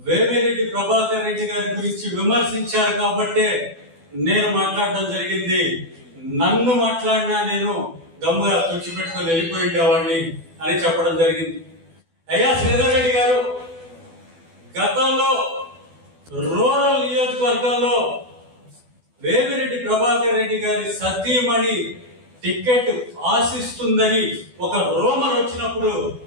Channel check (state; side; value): late; left; 12 ms